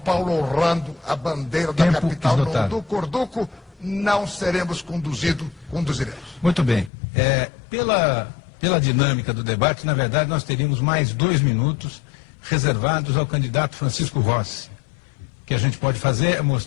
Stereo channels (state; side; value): drops out; right; at 6.9 s